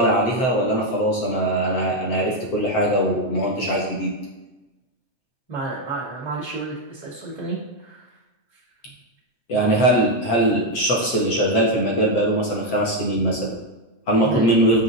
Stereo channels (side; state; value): right; late; 7.7 ms